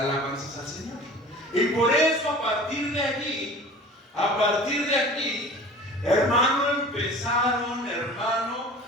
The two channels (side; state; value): both; normal; correlation 0.41